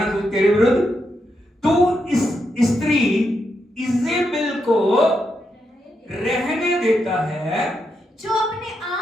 तू तेरे विरुद्ध? तू इस स्त्री इजेबेल को रहने देता है, जो अपने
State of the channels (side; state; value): both; normal; correlation 0.83